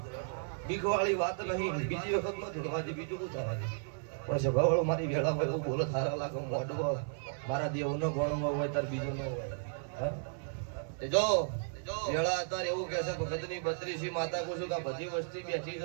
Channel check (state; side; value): silent; left; 55 dB below the other